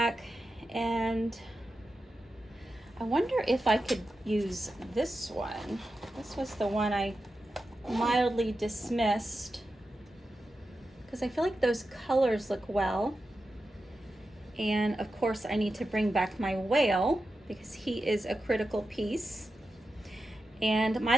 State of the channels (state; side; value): normal; both; correlation 0.91